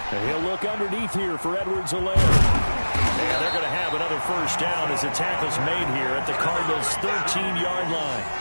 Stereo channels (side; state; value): both; inverted; correlation -1.00